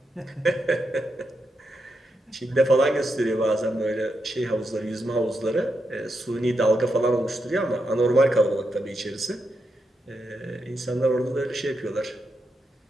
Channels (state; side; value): normal; both; correlation 0.84